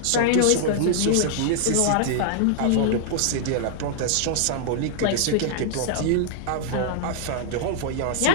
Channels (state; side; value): different; both; correlation -0.01